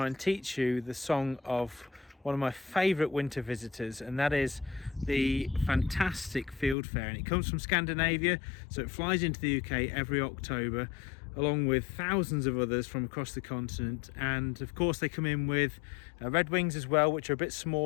and teach you the song of one of my favourite winter visitors, and that is the fantastic Fieldfare. And it comes from Scandinavia, so it flies into the UK every October along with thousands of others from across the continent. And of course they come in with red wings as well, which are a bit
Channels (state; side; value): drops out; right; at 6.8 s